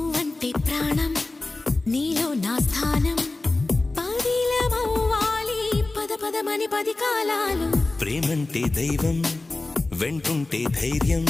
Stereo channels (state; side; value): quieter; right; 3.1 dB